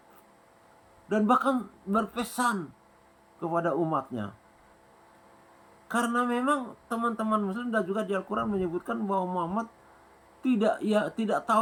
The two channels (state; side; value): identical; both; correlation 1.00